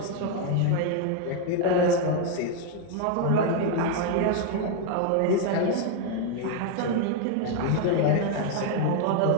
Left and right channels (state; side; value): different; both; correlation 0.01